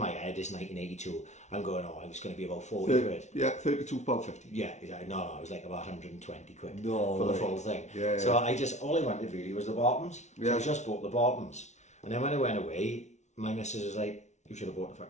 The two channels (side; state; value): right; late; 0.33 ms